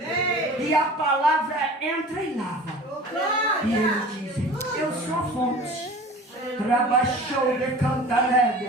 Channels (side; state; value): both; normal; correlation 0.41